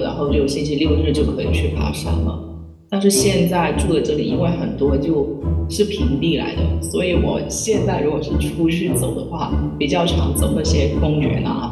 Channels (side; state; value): both; identical; correlation 1.00